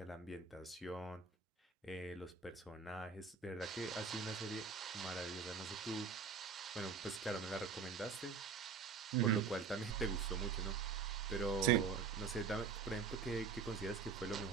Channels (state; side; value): quieter; left; 5.5 dB